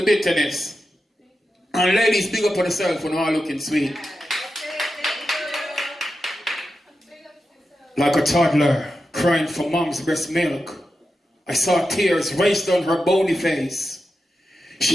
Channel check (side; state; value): both; normal; correlation 0.90